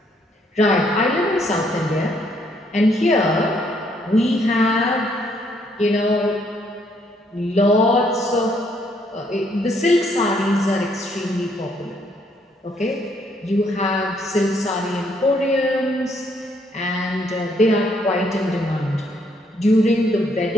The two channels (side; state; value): both; normal; correlation 0.70